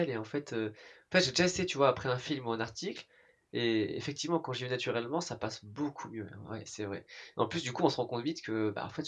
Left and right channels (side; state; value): both; identical; correlation 1.00